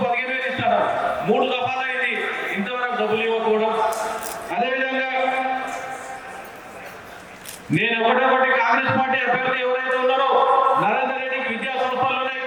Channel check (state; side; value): identical; both; correlation 1.00